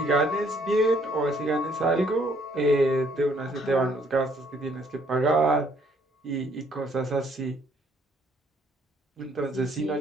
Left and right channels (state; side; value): normal; both; correlation 0.65